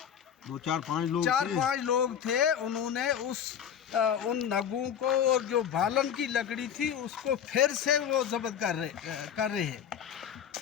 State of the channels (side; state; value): right; quieter; 8.7 dB